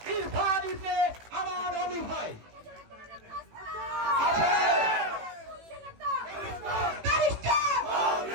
ইরফান ইবনে আমান আলী ভাই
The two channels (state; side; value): late; left; 18 ms